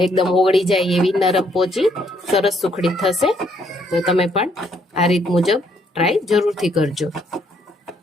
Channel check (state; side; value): normal; both; correlation 0.69